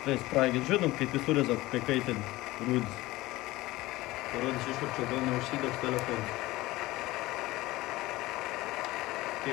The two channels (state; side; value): quieter; right; 18.8 dB